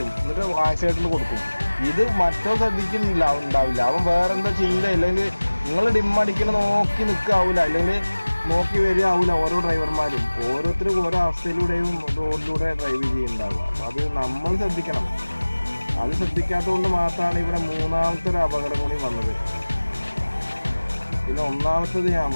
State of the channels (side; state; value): both; inverted; correlation -1.00